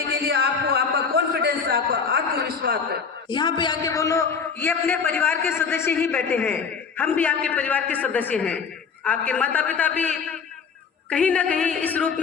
के लिए आपको आपका कॉन्फिडेंस, आपका आत्मविश्वास है। यहाँ पे आके बोलो ये अपने परिवार के सदस्य ही बैठे हैं, हम भी आपके परिवार के सदस्य हैं। आपके माता पिता भी कहीं ना कहीं इस रूप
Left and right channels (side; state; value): right; quieter; 5.9 dB